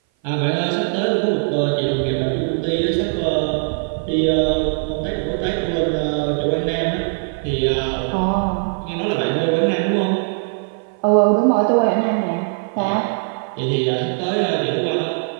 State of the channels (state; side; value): silent; left; 58 dB below the other